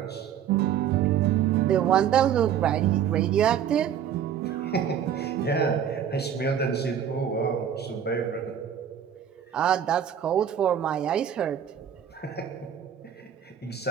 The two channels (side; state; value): left; quieter; 8.9 dB